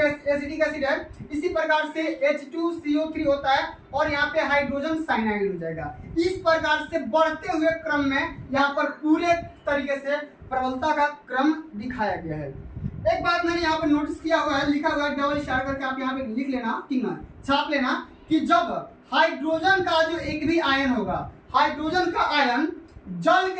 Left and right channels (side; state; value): both; identical; correlation 1.00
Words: एसिडिक एसिड है। इसी प्रकार से H2CO3 होता है, और यहाँ पे हाइड्रोजन साइनाइड हो जाएगा। इस प्रकार से बढ़ते हुए क्रम में यहाँ पर पूरे तरीके से प्रबलता का क्रम दिखाया गया है। एक बात मैंने यहाँ पर नोटिस किया हुआ है, लिखा हुआ है, डबल इशारा करके आप यहाँ पे लिख लेना, ठीक ना, छाप लेना, कि जब हाइड्रोजन का जो एक भी आयन होगा, हाइड्रोजन का आयन जल